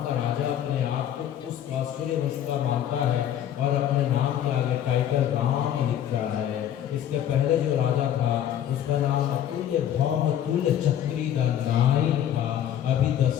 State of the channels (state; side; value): quieter; right; 10.5 dB